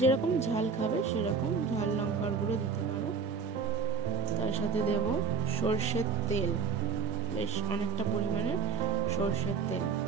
ঝাল খাবে সেরকম ঝাল লঙ্কার গুঁড়ো দিতে পারো। তার সাথে দেব সর্ষের তেল, বেশ অনেকটা পরিমাণে সর্ষের তেল।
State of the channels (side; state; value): left; quieter; 5.7 dB